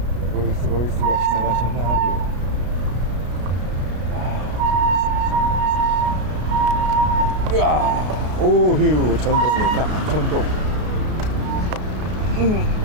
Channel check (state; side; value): late; left; 33 ms